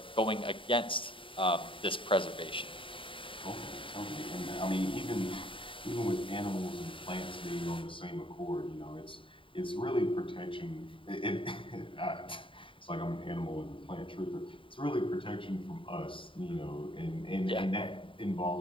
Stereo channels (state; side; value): late; right; 0.25 ms